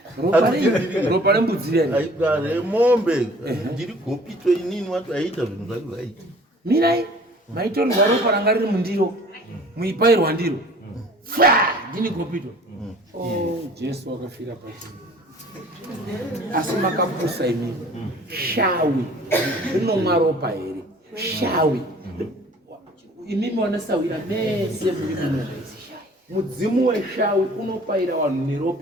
ropa rembudzi remombe ndiri Gopito inini wati aiita zvinhu zvake zvaita mirai maitorwa ropa ranga riri mundiro muipairwa ndiro ndini Gopito. Jesu akafira pasi asi makapusa imini shawi rinomwa ropa here shawi imimi wanasawira mese muri mudzimu weshawi unopaira vanhu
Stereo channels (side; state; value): both; normal; correlation 0.50